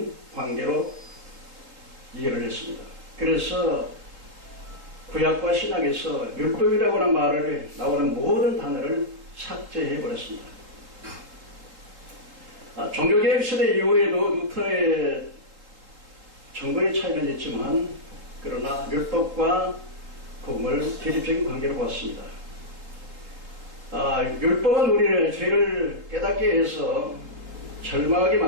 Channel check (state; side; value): late; left; 3.6 ms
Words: 관계로 이해를 했습니다. 그래서 구약과 신약에서 율법이라고 하는 말을 나오는 모든 단어를 삭제해 버렸습니다. 종교개혁 시대 이후에도 루터의 정거의 차이는 있지만 그러나 율법과 복음을 대립적인 관계로 보았습니다. 율법은 우리를 죄를 깨닫게 해서 절망하게